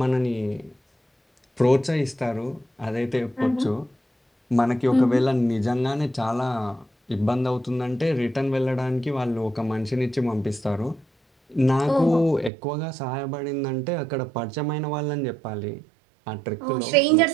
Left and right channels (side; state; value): left; drops out; at 12.5 s